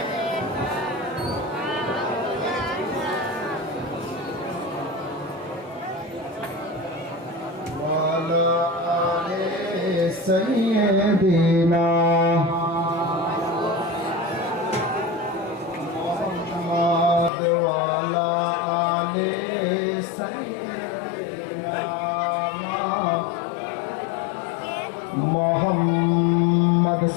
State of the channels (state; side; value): drops out; right; at 17.3 s